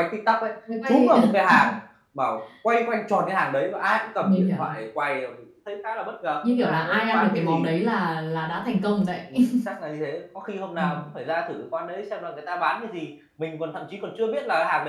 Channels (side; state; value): both; identical; correlation 1.00